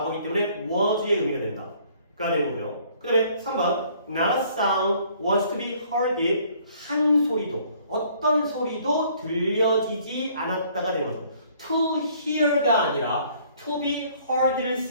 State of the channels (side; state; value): both; inverted; correlation -0.60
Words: 때문에 was의 의미가 된다. 가 되는 거고요. 그 다음에 3번 Not a sound was to be heard. 한 소리도 어떤 소리도 들려지지 않았다가 되는 거죠. To hear가 아니라 to be heard를